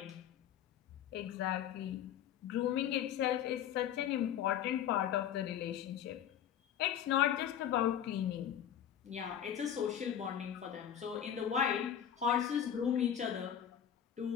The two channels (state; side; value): quieter; right; 9.8 dB